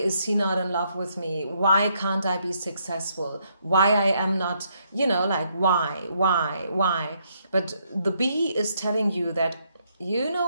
he not in love with me? Why can't I be successful? Why I am not, you know, like, why? But the bee is telling you that, you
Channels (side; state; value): both; inverted; correlation -0.73